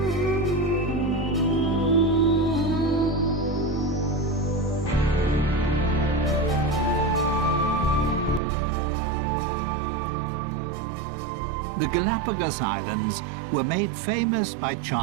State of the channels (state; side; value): drops out; left; at 8.4 s